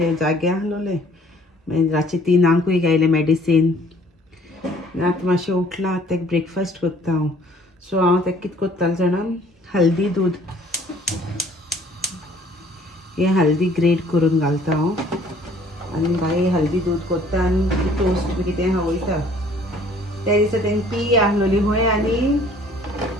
जागे आसलोलें. मागीर रातचे 3 घायलें मेडिसीन. आतां मातशें उठलां. आतां ताका ब्रेकफास्ट करता हांव. सो हांव ताका कितें करतालें जाणा, हल्दी दूद, हें हल्दी ग्रेट करून घालता हांव. आनी बाय हल्दी दूद करता आनी टोस्ट बी कितें खावयता. त्या दिसा तेंगे पी आहलोली खंय आनी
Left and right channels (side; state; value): both; normal; correlation 0.56